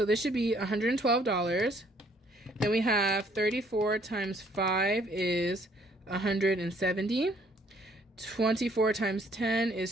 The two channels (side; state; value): both; normal; correlation 0.63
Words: this should be $112. Then we have 34 times 5 is 170. 24 times 10